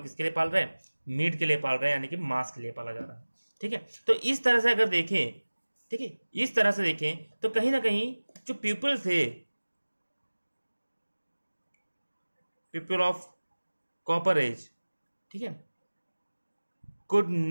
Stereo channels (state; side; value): inverted; both; correlation -1.00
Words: लिए पाल रहे हैं, मीट के लिए पाल रहे हैं, यानी कि मांस के लिए पाला जा रहा है, ठीक है। तो इस तरह से अगर देखें, ठीक है, इस तरह से देखें तो कहीं ना कहीं जो पीपल थे, पीपल ऑफ कॉपर एज, ठीक है, could